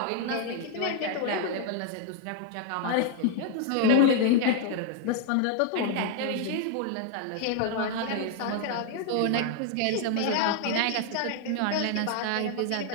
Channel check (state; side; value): different; both; correlation 0.00